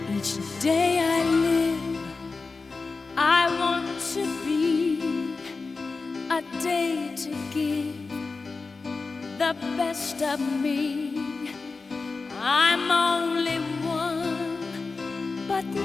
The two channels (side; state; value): right; quieter; 4.1 dB